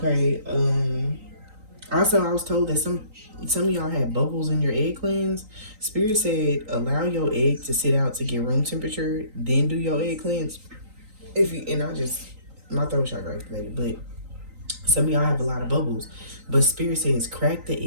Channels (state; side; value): late; left; 3.9 ms